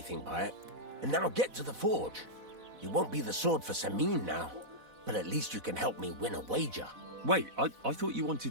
by it. And now get to the forge. You won't be the sword for Samin now, but at least you can help me win a wager. Wait, I thought you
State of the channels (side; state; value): left; late; 4.0 ms